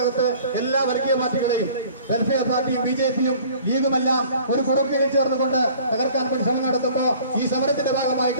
എല്ലാ വർഗീയ പാർട്ടികളെയും, വെൽഫെയർ പാർട്ടിയും BJP-യും ലീഗുമെല്ലാം ഒരു കുടക്കീഴിൽ ചേർന്നുകൊണ്ട് തകർക്കാൻ വേണ്ടി ശ്രമം നടത്തുമ്പോൾ ഈ സമരത്തിന്റെ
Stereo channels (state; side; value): inverted; both; correlation -0.50